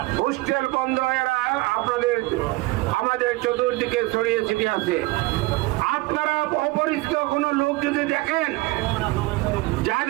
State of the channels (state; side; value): quieter; left; 21.3 dB